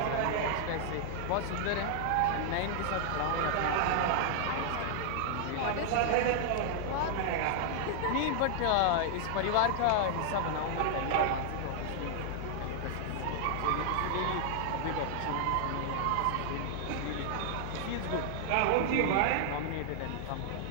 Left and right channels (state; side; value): different; both; correlation -0.01